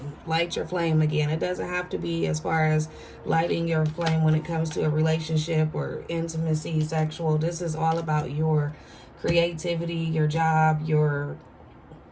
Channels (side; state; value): both; identical; correlation 1.00